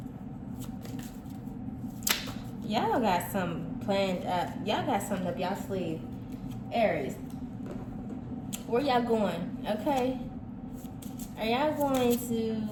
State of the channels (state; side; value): identical; both; correlation 1.00